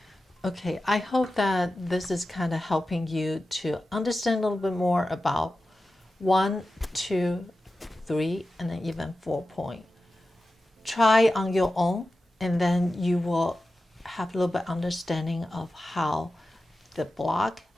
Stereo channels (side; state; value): both; normal; correlation 0.93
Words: Okay, I hope that this is kind of helping you to understand a little bit more about 1, 2, 3, and then even 4-point. Try on your own, and then you will have a little bit understanding of how the block